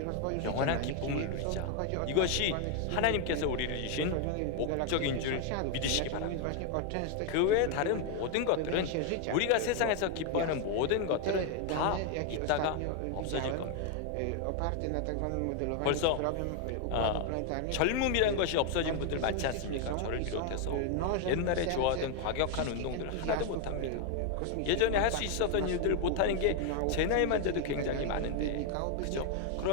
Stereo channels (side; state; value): both; different; correlation 0.00